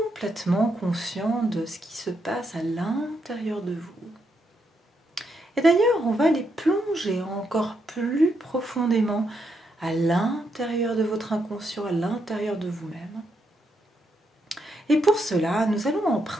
conscient de ce qui se passe à l'intérieur de vous. Et d'ailleurs, on va aller plonger encore plus profondément à l'intérieur de votre inconscient, à l'intérieur de vous-même. Et pour cela, nous allons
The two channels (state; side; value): normal; both; correlation 0.79